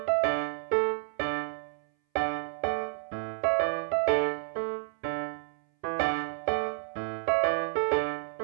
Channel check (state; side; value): silent; left; 58 dB below the other